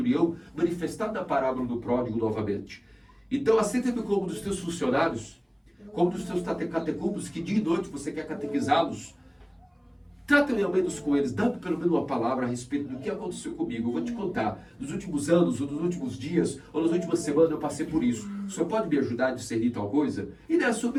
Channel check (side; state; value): both; identical; correlation 1.00